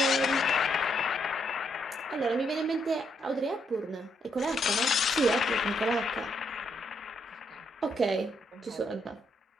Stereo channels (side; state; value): both; normal; correlation 0.76